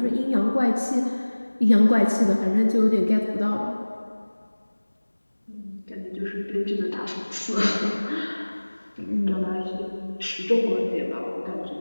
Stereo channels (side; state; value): both; inverted; correlation -1.00